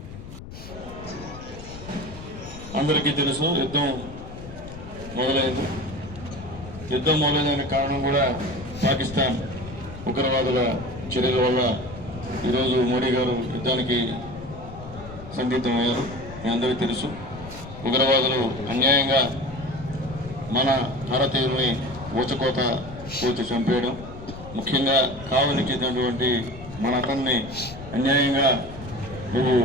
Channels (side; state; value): left; noise; rumble, 13 dB below the sound